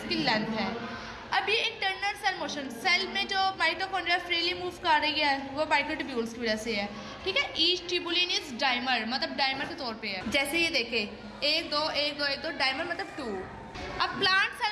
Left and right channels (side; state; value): both; identical; correlation 1.00